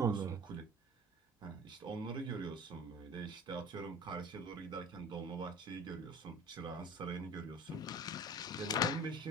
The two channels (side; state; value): both; normal; correlation 0.40